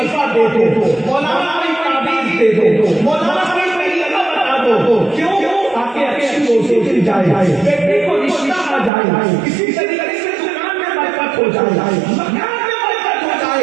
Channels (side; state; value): left; drops out; at 8.9 s